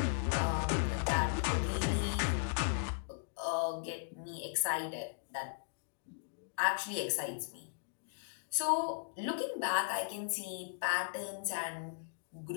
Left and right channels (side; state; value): right; silent; digital silence